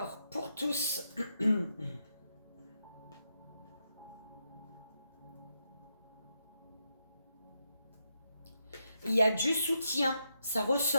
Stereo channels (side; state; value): both; inverted; correlation -0.82